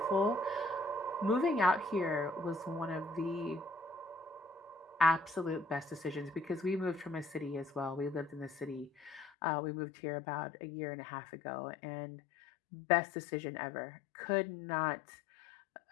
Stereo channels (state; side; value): drops out; right; at 9.3 s